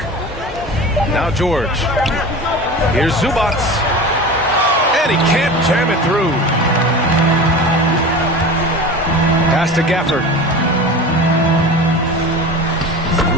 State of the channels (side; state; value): both; normal; correlation 0.33